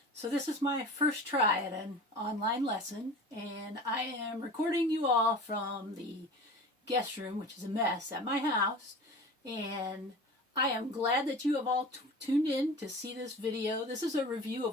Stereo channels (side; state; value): both; normal; correlation 0.37